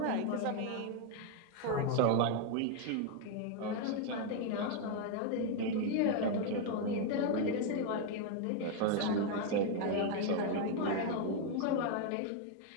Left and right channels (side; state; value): both; different; correlation 0.01